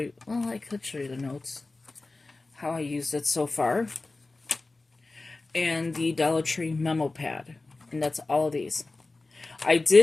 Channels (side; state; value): right; quieter; 3.3 dB